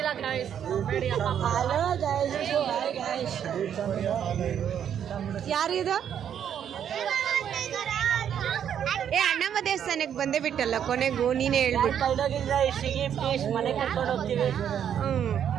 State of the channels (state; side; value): quieter; left; 9.0 dB